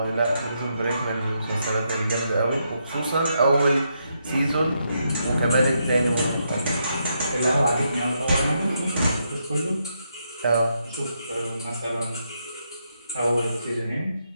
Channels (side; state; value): both; inverted; correlation -0.80